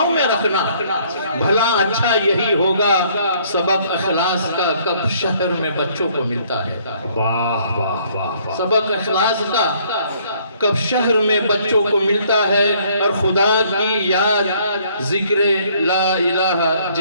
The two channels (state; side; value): inverted; both; correlation -0.63